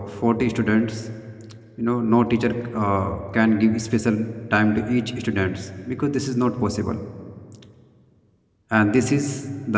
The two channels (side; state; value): both; identical; correlation 1.00